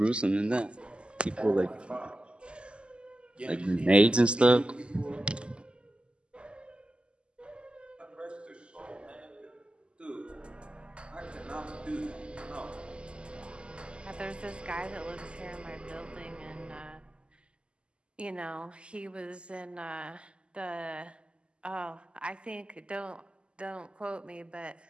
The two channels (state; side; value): late; left; 0.052 ms